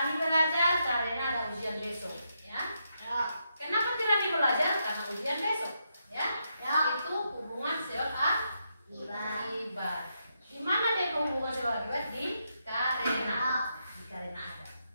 belajar karena ada ujian besok, ya. Kenapa Rani belajar? Karena ujian besok, ya. Itu hubungan sebab akibat. Di mana dia hubungan sebab akibat? Di karena. Di karena ada.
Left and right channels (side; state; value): both; inverted; correlation -0.82